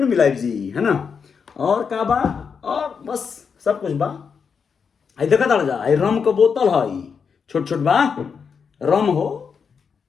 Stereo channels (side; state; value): right; quieter; 6.1 dB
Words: मिलाइब जी है ना। और का बा और बस सब कुछ बा। आई देखा ताड़ जा आई रम के बोतल है छोट छोट बा रम हो